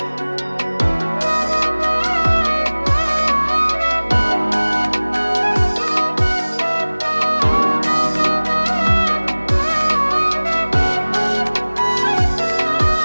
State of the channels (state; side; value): inverted; both; correlation -1.00